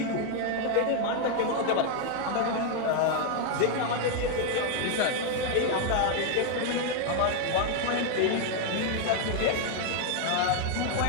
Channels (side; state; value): both; different; correlation 0.00